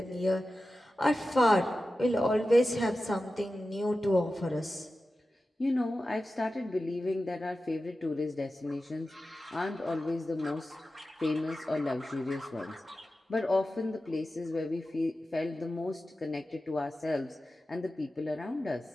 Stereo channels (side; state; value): both; normal; correlation 0.93